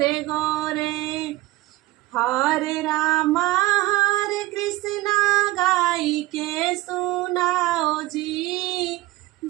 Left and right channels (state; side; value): quieter; left; 18.3 dB